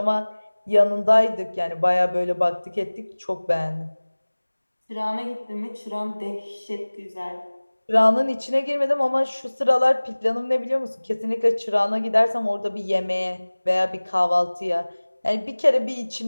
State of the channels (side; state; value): both; inverted; correlation -1.00